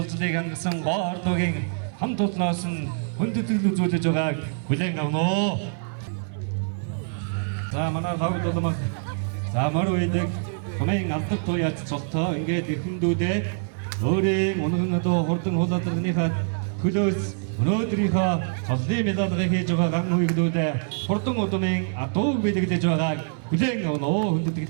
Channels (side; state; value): left; silent; 62 dB below the other